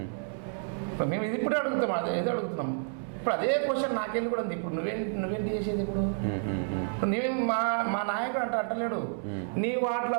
మేము ఇది ఇప్పుడే అడుగుతాం, ఏదో అడుగుతున్నాం. ఇప్పుడు అదే క్వశ్చన్ నాకెళ్ళి కూడా ఉంది. ఇప్పుడు నువ్వేంటి చేసేది? ఇప్పుడు నువ్వేం మా నాయకుడు అంటలేడు నీ వార్డులో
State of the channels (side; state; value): left; silent; digital silence